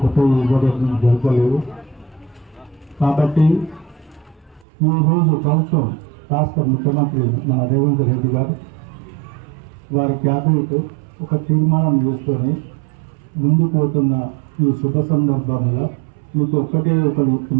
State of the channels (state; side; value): drops out; left; at 4.7 s